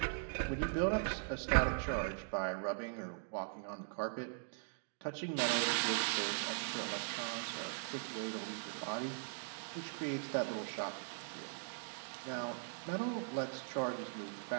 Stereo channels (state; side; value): silent; left; digital silence